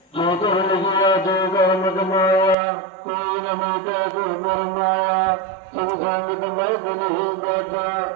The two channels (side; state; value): left; drops out; at 2.6 s